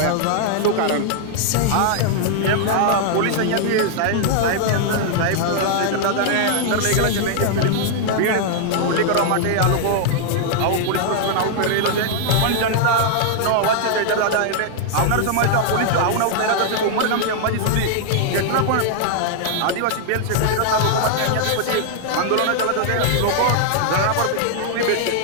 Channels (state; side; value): different; both; correlation -0.01